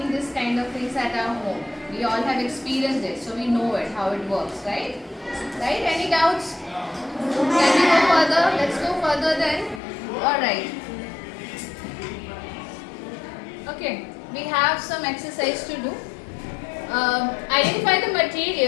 this kind of things at our home. We all have experienced it, so we know it, how it works, right? Right? Any doubts? Can we go further? Let's go further then. Alright. Okay, we have some exercise to do. Identify the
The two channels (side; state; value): right; drops out; at 9.8 s